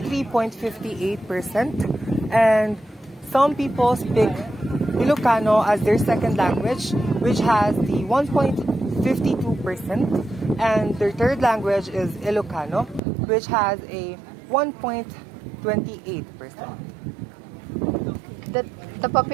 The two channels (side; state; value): left; drops out; at 13.0 s